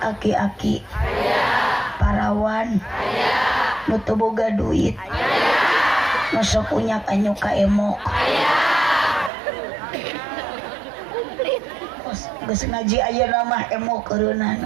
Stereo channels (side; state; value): left; drops out; at 9.3 s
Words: Aki-aki? Parawan? Nutu boga duit? Masuk punya kanyu ka emok. Geus ngaji ayeuna mah emok